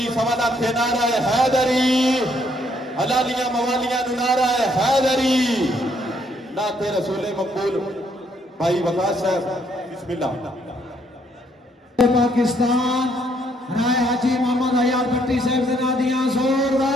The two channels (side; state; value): both; normal; correlation 0.70